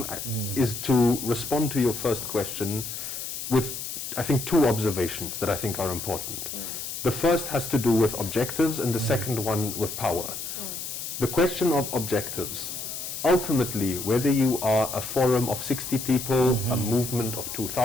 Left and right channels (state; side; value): noise; left; hiss, 6 dB below the sound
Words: is to respond to your first question with, I think, 2 observations that I think are important. The first has to do with objectives, and the second one with power. The question of objectives. Ultimately, whether you are a forum of 60 people, a movement of